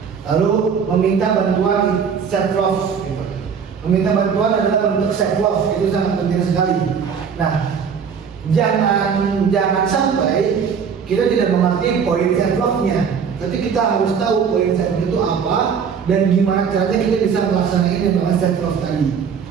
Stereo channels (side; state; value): left; quieter; 6.7 dB